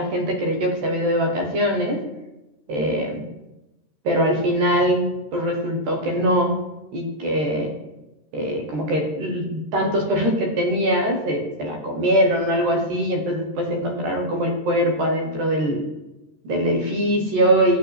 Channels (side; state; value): left; late; 13 ms